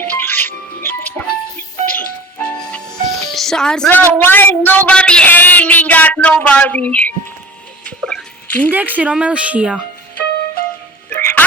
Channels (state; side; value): normal; both; correlation 0.40